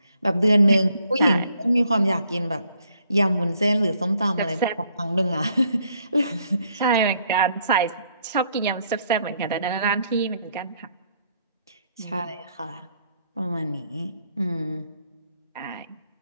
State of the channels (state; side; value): inverted; both; correlation -0.69